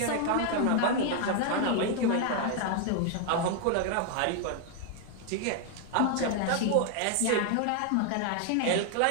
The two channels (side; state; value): both; different; correlation 0.00